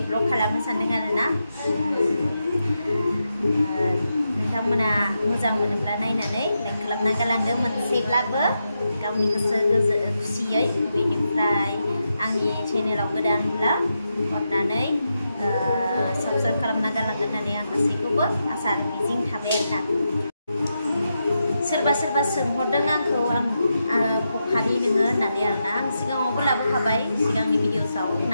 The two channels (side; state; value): both; inverted; correlation -0.86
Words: ब्लग खालामनो सानदों आरोना नोंथांमोना मोजां मोनोब्ला नायनानै लाइक खालामना गालांदो मोनसेब्लाबो गावनि गोसो खुसियै बेनिफ्राय आंनि चेनेलाव गोदानब्ला अननानै साबस्क्राइब खालामना गालांगोन होननानै आं गासैखौबो आसा आरो मिजिं थाबाय आरोना सोरबा सोरबा सोंहरदों आंखौ बखालि नोङो होननानै आरोना आं सिगाङावबो लाबोखाबाय सिगांनि भिडिअ'सआव